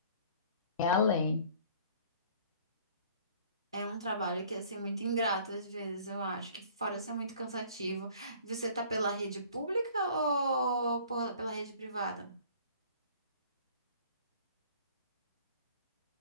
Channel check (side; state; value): both; inverted; correlation -0.52